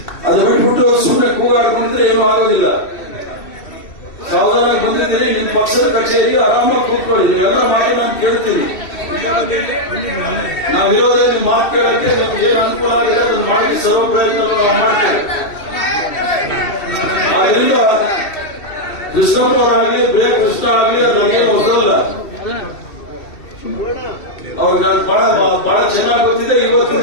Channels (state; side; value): late; right; 2.7 ms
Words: ಅದು ಬಿಟ್ಬಿಟ್ಟು ಸುಮ್ಮನೆ ಕೂಗಾಡ್ಕೊಂಡಿದ್ರೆ ಏನೂ ಆಗೋದಿಲ್ಲ. ಸಾವಧಾನ ಬಂದಿದ್ದೀರಿ, ನಿಮ್ ಪಕ್ಷದ ಕಚೇರಿ ಆರಾಮಾಗಿ ಕೂತ್ಕೊಳ್ಳಿ. ನೀವೆಲ್ಲ ಮಾತು ನಾನು ಕೇಳ್ತೀನಿ. ನಾವಿರೋದೇ ನಿಮ್ ಮಾತು ಕೇಳಕ್ಕೆ ನಮ್ಗೆ ಏನ್ ಅನುಕೂಲ ಆಗಿದೆ ಅದನ್ನು ಮಾಡಿ ಸರ್ವ ಪ್ರಯತ್ನ ಮಾಡ್ತೇವೆ. ಆದ್ರಿಂದ ಕೃಷ್ಣಪ್ಪ ಅವರಾಗಲಿ ಬೇ ಕೃಷ್ಣ ಆಗಲಿ ನನಗೆ ಹೊಸದಲ್ಲ. ಅವ್ರಿಗೆ ಬಹಳ ಚೆನ್ನಾಗಿ ಗೊತ್ತಿದೆ.